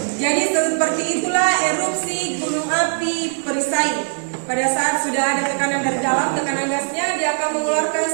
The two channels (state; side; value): silent; left; digital silence